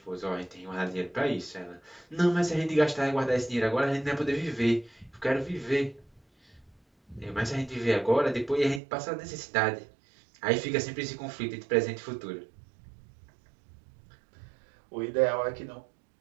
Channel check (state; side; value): drops out; left; at 8.8 s